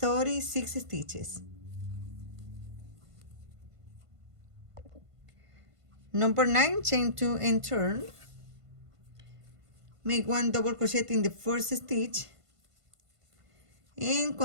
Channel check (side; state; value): left; late; 1.5 ms